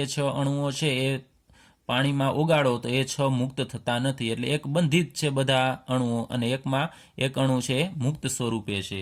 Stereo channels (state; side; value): identical; both; correlation 1.00